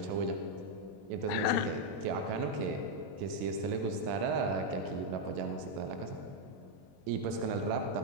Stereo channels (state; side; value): late; left; 21 ms